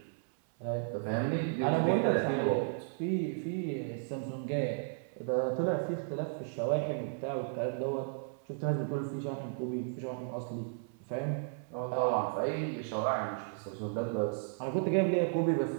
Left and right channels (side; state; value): left; silent; 55 dB below the other